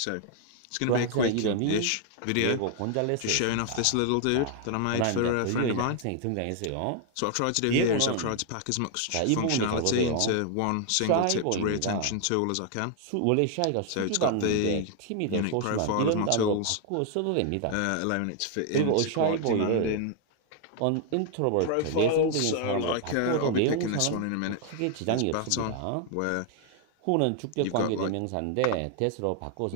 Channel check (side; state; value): both; different; correlation 0.00